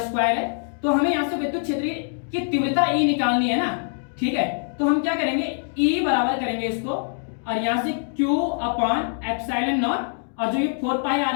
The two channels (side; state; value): right; silent; digital silence